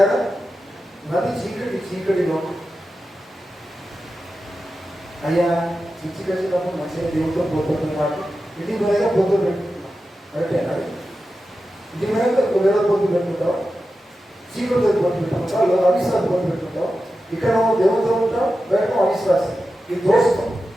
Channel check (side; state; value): both; normal; correlation 0.91